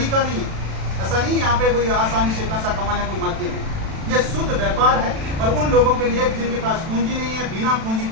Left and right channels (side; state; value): left; late; 36 ms